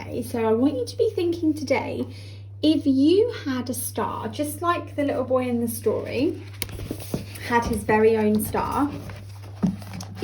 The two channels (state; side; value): identical; both; correlation 1.00